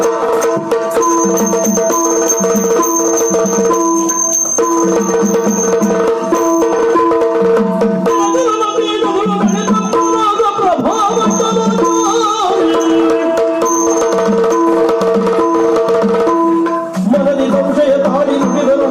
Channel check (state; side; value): identical; both; correlation 1.00